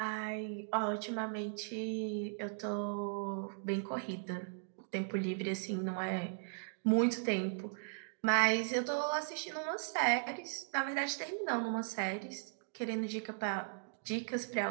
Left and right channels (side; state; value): left; silent; digital silence